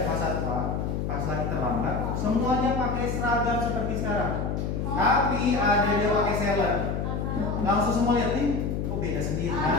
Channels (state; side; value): noise; left; hum, 1 dB below the sound